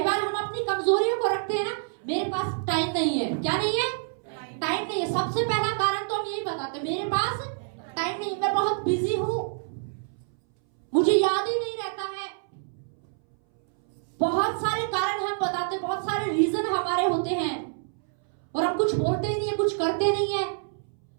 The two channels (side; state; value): left; silent; 60 dB below the other